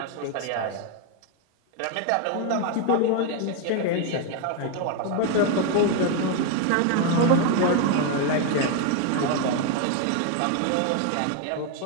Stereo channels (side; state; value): both; different; correlation 0.01